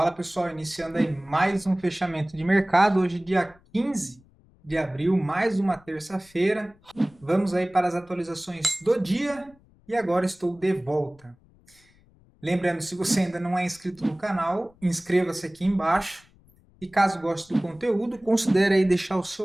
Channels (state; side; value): noise; left; rumble, 30 dB below the sound